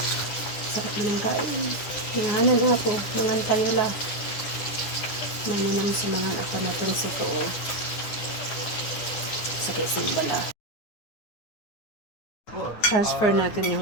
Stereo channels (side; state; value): right; late; 9.6 ms